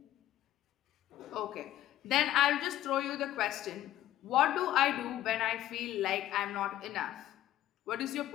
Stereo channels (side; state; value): right; quieter; 13.4 dB